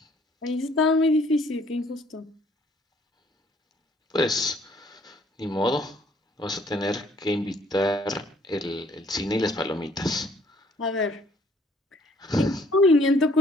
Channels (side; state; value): both; normal; correlation 0.62